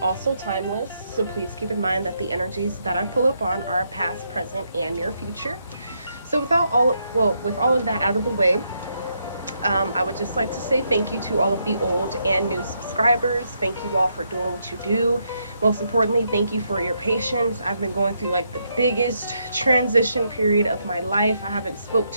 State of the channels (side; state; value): both; inverted; correlation -0.78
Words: also timeless. So please keep in mind that the energies that I pull up on are past, present, and near future. So with all of that out of the way, I would just like to say thank you to all of the old and new subscribers. Thank you all for doing what you do. Most importantly, thank you for your patience. I've been going through like the biggest transition period of my life. I haven't spoke